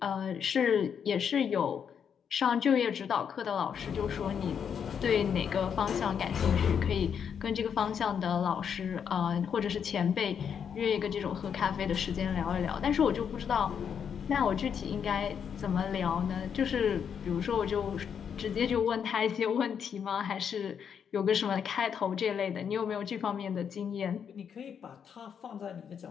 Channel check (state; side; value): quieter; right; 7.6 dB